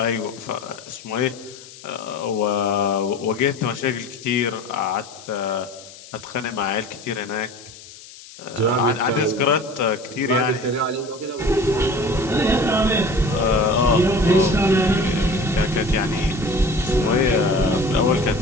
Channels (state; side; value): noise; left; hiss, 18 dB below the sound